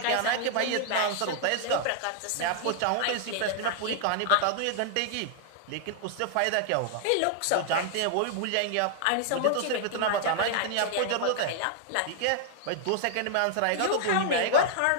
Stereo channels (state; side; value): different; both; correlation -0.01